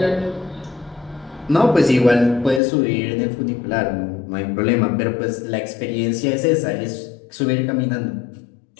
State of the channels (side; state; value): right; drops out; at 2.6 s